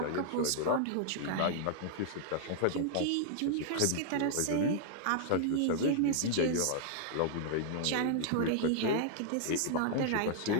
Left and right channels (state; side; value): different; both; correlation -0.01